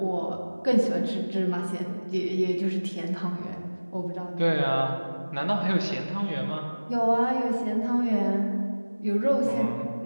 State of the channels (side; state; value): both; inverted; correlation -1.00